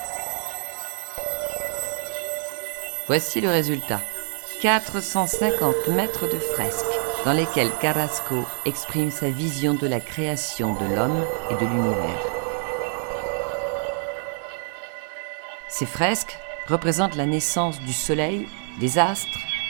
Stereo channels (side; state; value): left; silent; 61 dB below the other